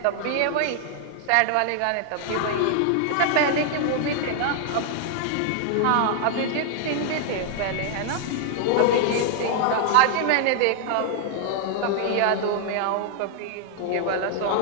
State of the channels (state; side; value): different; both; correlation 0.00